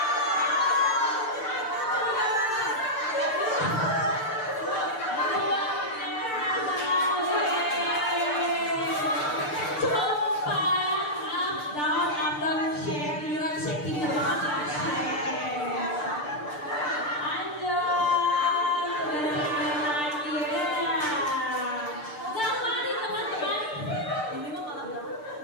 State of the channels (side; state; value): right; late; 6.7 ms